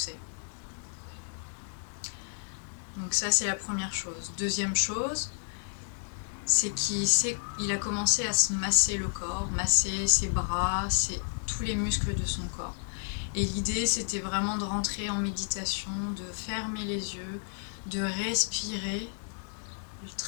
Donc ça, c'est la première chose. Deuxième chose, c'est qu'il a commencé à se masser le corps, masser ses bras, tous les muscles de son corps. Et l'idée, c'était vraiment de rentrer en méditation, de fermer les yeux, de respirer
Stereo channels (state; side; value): silent; right; digital silence